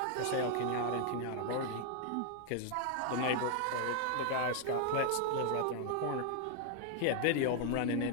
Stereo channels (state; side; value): different; both; correlation 0.00